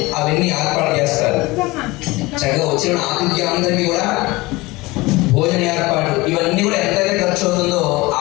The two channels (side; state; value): right; quieter; 21.6 dB